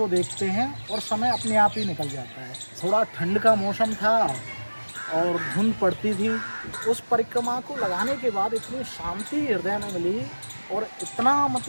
देखते हैं और समय अपने आप ही निकल जाता है। थोड़ा ठंड का मौसम था और धुंध पड़ती थी। उस परिक्रमा को लगाने के बाद इतनी शांति हृदय में मिली और इतना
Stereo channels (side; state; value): both; inverted; correlation -1.00